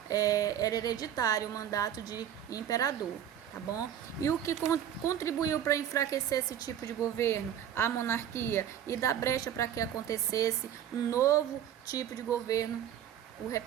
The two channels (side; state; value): left; quieter; 10.0 dB